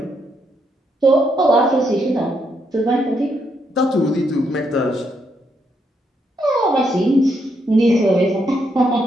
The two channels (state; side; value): normal; both; correlation 0.77